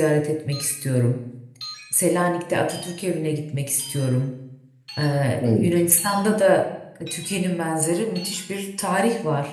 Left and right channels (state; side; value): identical; both; correlation 1.00